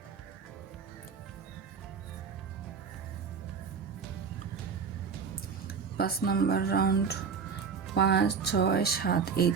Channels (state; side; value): quieter; left; 6.0 dB